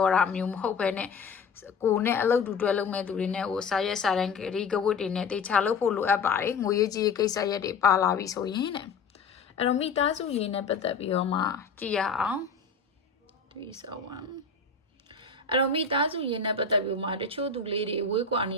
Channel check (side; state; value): right; quieter; 4.9 dB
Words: ာတာမျိုးမဟုတ်ပဲနဲ့ကိုနဲ့အလုပ်တူတွဲလုပ်မဲ့သူတွေနဲ့ဟိုစာရက်စာတမ်းဂရီကဝတ်တွေနဲ့တေချာလုပ်ဖို့လိုအပ်ပါတယ်ငွေရေးကြီးကိစ္စရက်တွေပါလာပြီဆိုရင်တဲ့အဲ့တော့မိသားစုရင်းနဲ့ပတ်သက်ပြီးတော့မှကြည့်ရအောင်371အဲ့တော့မိသားစုရင်းနဲ့ပတ်သက်ပြီးမှတချို့သူလေးတွေဝေးကွာနေ